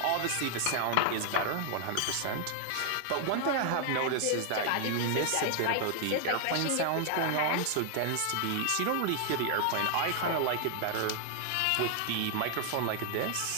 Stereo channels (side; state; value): both; different; correlation 0.00